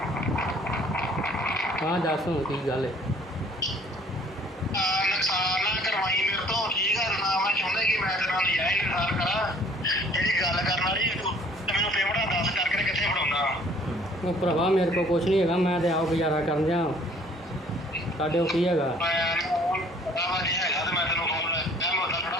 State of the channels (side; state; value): both; normal; correlation 0.56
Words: ਹਾਂ ਦੱਸ ਹੁਣ ਕੀ ਗੱਲ ਹੈ? ਨੁਕਸਾਨ ਨਾ ਕਰਵਾਈ ਮੇਰੇ ਤੋਂ, ਠੀਕ ਆ ਨਾ। ਮੈਂ ਚਾਹੁੰਦਾ ਕਿ ਮੈਂ ਤੇਰੇ ਨਾਲ ਨਜਾਇਜ਼ ਇਨਸਾਰ ਕਰਾਂ। ਜਿਹੜੀ ਗੱਲ ਕਰਨ ਵਾਲੀ ਤੇ ਮੈਨੂੰ ਪੇਮੈਂਟਾਂ ਦੱਸ ਕਰਕੇ ਕਿੱਥੇ ਫੜਾਉਂਦਾ। ਉਹ ਭਰਾਵਾ ਮੇਰੇ ਕੋਲ ਕੁਛ ਨਹੀਂ ਹੈਗਾ, ਮੈਂ ਤੇ ਆਪ ਗੁਜ਼ਾਰਾ ਕਰਨ ਜਾ। ਸਾਡੇ ਕੋਲ ਕੀ ਹੈਗਾ? ਪਤਾ ਵਾ ਨਹੀਂ ਹੈਗਾ ਤੇ ਮੈਂ ਤੈਨੂੰ ਫੋਨ ਮੈਂ ਮੁੱਦਾ ਥੋੜਾ